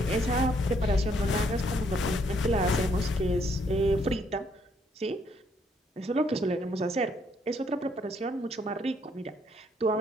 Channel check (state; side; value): normal; both; correlation 0.69